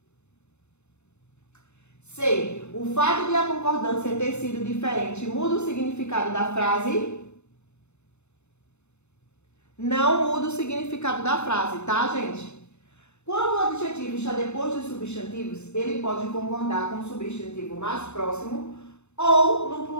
C. O fato de a concordância ter sido diferente muda o significado da frase? Não muda o significado da frase, tá, gente? Quando o adjetivo está depois dos substantivos, ele pode concordar com o substantivo mais próximo ou no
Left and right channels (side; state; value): right; late; 0.82 ms